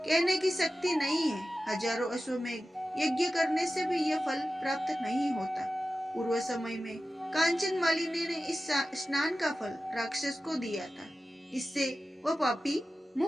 की शक्ति नहीं है। हजारों अश्वमेध यज्ञ करने से भी यह फल प्राप्त नहीं होता। पूर्व समय में कांचन मालिनी ने इस स्नान का फल राक्षस को दिया था, इससे वह पापी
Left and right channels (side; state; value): both; normal; correlation 0.94